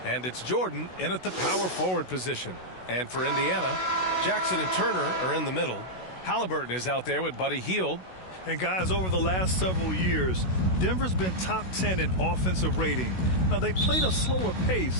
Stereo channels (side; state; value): right; late; 16 ms